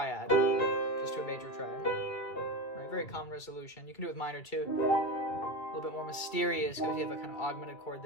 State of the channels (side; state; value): right; late; 2.3 ms